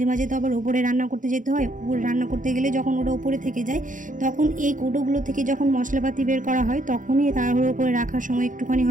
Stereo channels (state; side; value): late; left; 0.38 ms